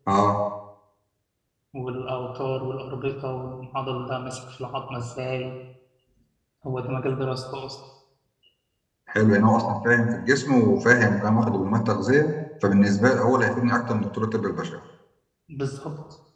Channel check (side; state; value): both; identical; correlation 1.00